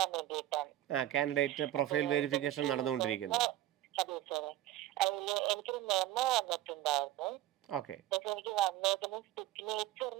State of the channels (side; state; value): left; quieter; 14.0 dB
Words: വേണ്ടിയിട്ടാണ്. കാൻഡിഡേറ്റ് പ്രൊഫൈൽ വെരിഫിക്കേഷൻ നടന്നുകൊണ്ടിരിക്കുന്നു. അതെ സാറേ, അതില് എനിക്കൊരു മെമ്മോ വന്നിട്ടുണ്ടായിരുന്നു. ഓക്കെ. പക്ഷെ എനിക്ക് വന്നേക്കുന്നത്